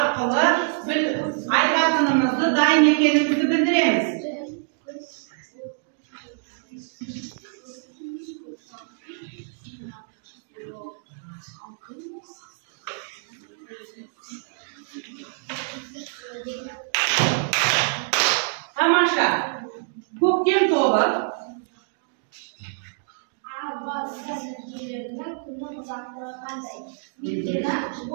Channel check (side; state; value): left; silent; digital silence